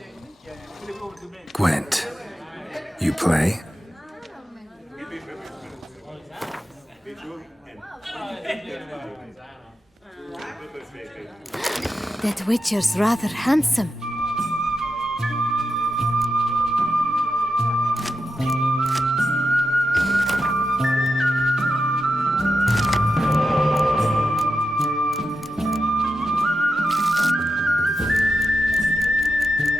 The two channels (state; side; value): normal; both; correlation 0.88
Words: Gwent. You play? That Witcher's rather handsome.